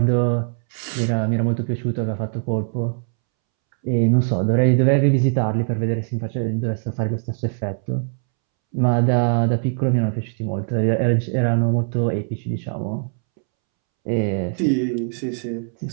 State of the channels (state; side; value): silent; left; 65 dB below the other